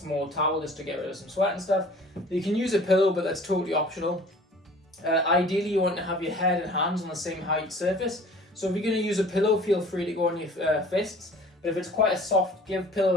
towel just to get rid of some sweat and stuff. You can use a pillow, but that's totally optional. Ideally, you want to have your head and hands on the same height surface. So if you're going to use a pillow, feel free to go on your fists. But if it's quite a soft give pillow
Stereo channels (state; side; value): normal; both; correlation 0.48